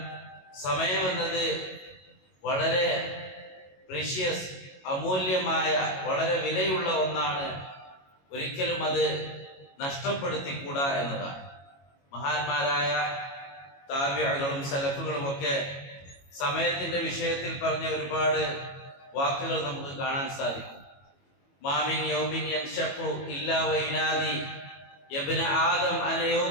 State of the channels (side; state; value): right; late; 22 ms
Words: സമയമെന്നത് വളരെ പ്രീഷ്യസ്, അമൂല്യമായ, വളരെ വിലയുള്ള ഒന്നാണ്. ഒരിക്കലും അത് നഷ്ടപ്പെടുത്തിക്കൂടാ എന്നതാണ്. മഹാന്മാരായ താബിഈകളും സലഫുകളും ഒക്കെ സമയത്തിന്റെ വിഷയത്തിൽ പറഞ്ഞ ഒരുപാട് വാക്കുകൾ നമുക്ക് കാണാൻ സാധിക്കും. മാമിൻ യൗമിൻ യൻഷഖു ഇല്ലാ വൈനാദി യബ്ന ആദം അന